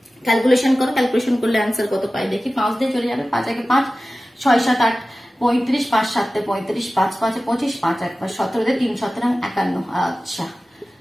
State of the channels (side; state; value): both; normal; correlation 0.96